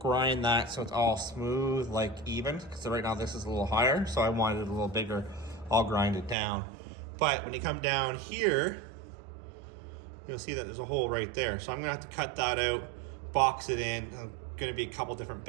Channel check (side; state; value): left; drops out; at 6.4 s